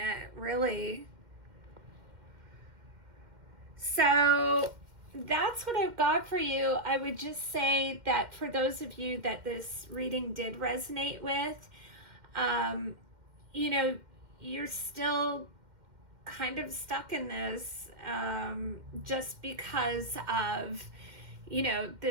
really. So that's what I've got for you. I would just say that for those of you that this reading did resonate with, you're still kind of stuck in this just because of,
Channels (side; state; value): left; late; 2.1 ms